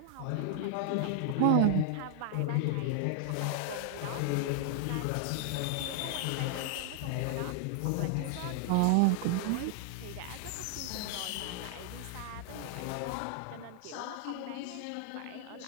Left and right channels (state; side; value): different; both; correlation 0.00